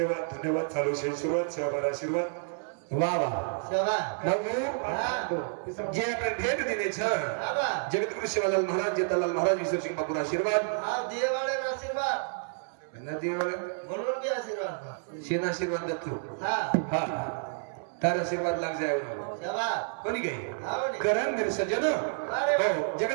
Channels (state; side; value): silent; left; 58 dB below the other